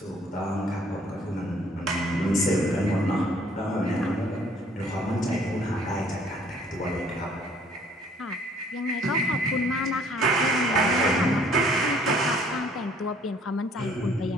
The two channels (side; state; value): both; normal; correlation 0.59